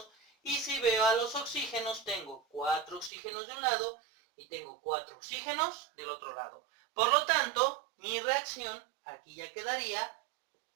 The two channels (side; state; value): left; drops out; at 3.1 s